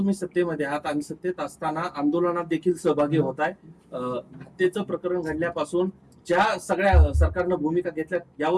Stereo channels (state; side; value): identical; both; correlation 1.00